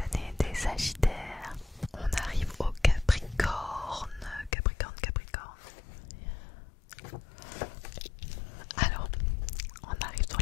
des Sagittaires. On arrive au Capricorne. Capricorne. Alors, on arrive sur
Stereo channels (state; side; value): drops out; right; at 4.5 s